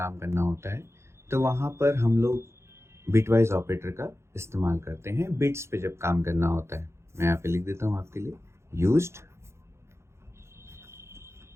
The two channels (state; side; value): late; left; 0.13 ms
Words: करना होता है तो वहाँ पर हम लोग बिटवाइज ऑपरेटर का इस्तेमाल करते हैं बिट्स पे जब काम करना होता है। मैं यहाँ पे लिख देता हूँ आपके लिए, used